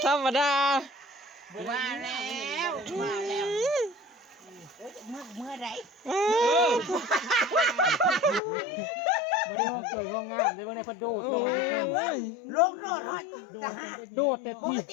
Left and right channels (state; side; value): drops out; right; at 8.4 s